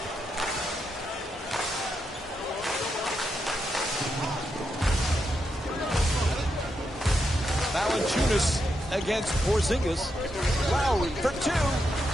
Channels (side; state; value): both; normal; correlation 0.83